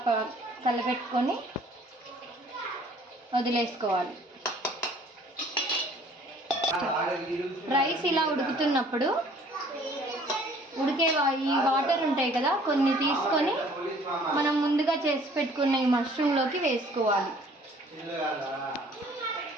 కలపెట్టుకొని వదిలేసుకోవాలి. రైస్ ఇలా ఉడుకుతున్నప్పుడు ఈ వాటర్ ఉంటాయి కదా, కొన్ని తీసుకొని మనం ముందుగా చేసి పెట్టుకున్న ఈ మష్రూమ్లోకి వేసుకోవాలి.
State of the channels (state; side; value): normal; both; correlation 0.55